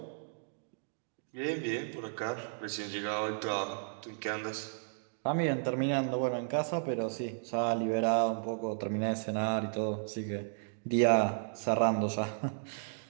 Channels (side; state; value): left; silent; digital silence